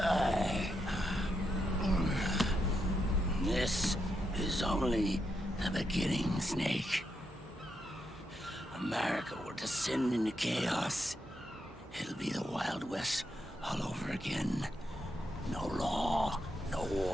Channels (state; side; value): normal; both; correlation 0.82